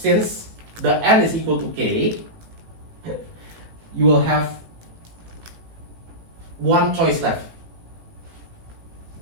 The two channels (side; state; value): left; late; 18 ms